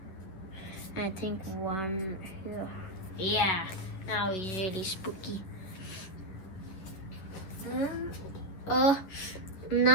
I think one here. Yeah, now he's really spooky.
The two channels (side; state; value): right; late; 11 ms